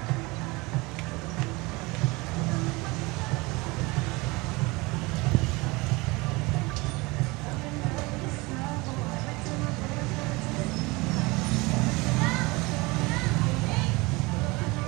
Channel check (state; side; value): quieter; left; 24.1 dB